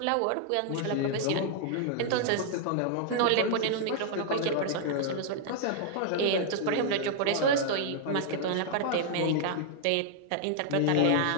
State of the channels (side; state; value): both; different; correlation -0.01